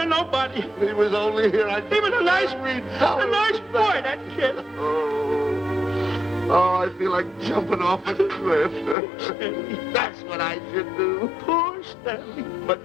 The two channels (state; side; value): drops out; right; at 9.0 s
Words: nobody. He was only here. He was a nice boy, that kid. Oh, I feel like jumping off a cliff. That's what I should do. Poor Stanley.